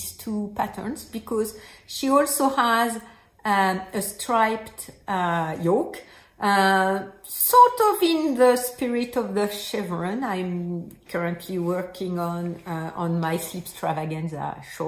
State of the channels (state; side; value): identical; both; correlation 1.00